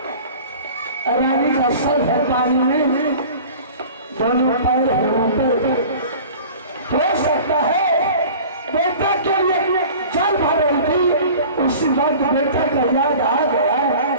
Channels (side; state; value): both; inverted; correlation -0.42